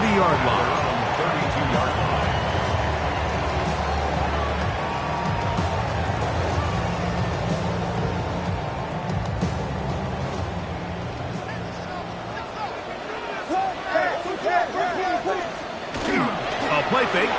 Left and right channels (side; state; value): both; identical; correlation 1.00